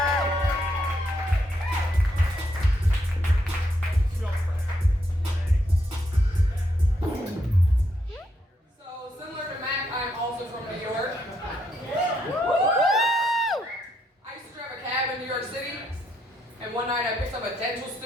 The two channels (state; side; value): normal; both; correlation 0.77